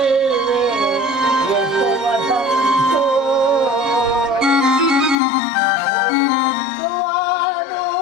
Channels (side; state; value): right; drops out; at 5.2 s